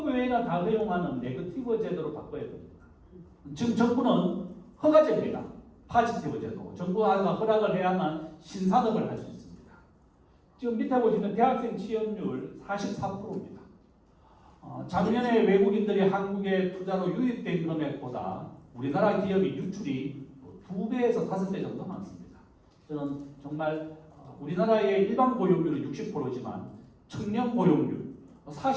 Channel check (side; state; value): both; identical; correlation 1.00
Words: 외에는 다 허용하는 네거티브 제도로 바꿔야 됩니다. 지금 정부는 허가제입니다. 파지티브 제도. 정부가 허락을 해야만 신산업을 할 수 있습니다. 지금 밑에 보시면 대학생 취업률 44%입니다. 작년에 외국인들이 한국에 투자로 유입된 금액보다 우리나라 기업이 유출이 2배에서 5배 정도 많습니다. 저는 정말 우리나라의 일반 고용률은 60%지만 청년 고용률